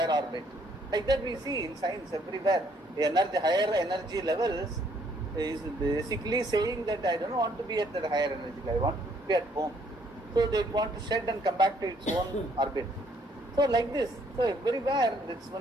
orbit. Like that we see in science everywhere. Higher energy levels is basically saying that I don't want to be at that higher energy level, I want to be at home. So they want to shed and come back to its own orbit. So like this, so everywhere it's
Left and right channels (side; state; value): both; normal; correlation 0.66